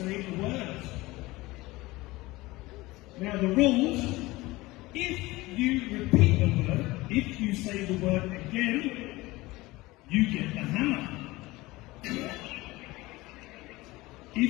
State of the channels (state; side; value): quieter; right; 20.3 dB